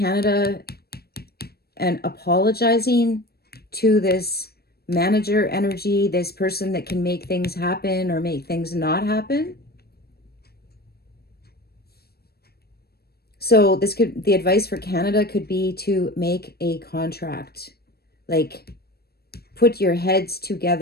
and apologizing to this manager energy, this person that can make things happen or make things not happen. So this could, the advice for Canada could be to make a contract, like put your heads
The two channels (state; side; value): late; right; 0.46 ms